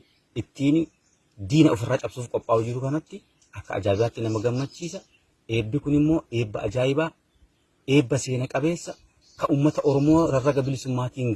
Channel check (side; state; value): both; identical; correlation 1.00